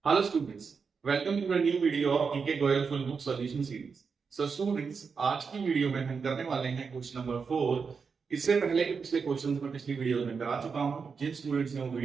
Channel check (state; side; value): quieter; left; 5.5 dB